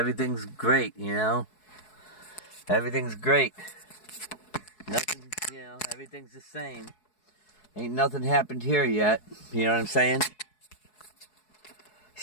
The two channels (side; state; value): right; late; 4.7 ms